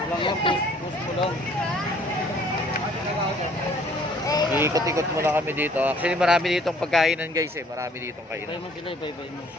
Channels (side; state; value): both; normal; correlation 0.58